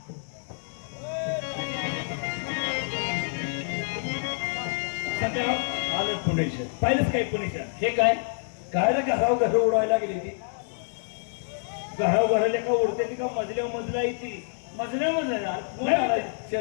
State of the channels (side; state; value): right; silent; digital silence